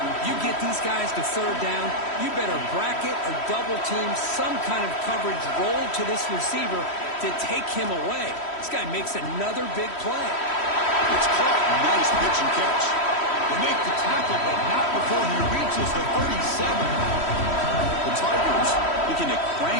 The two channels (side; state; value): right; late; 3.1 ms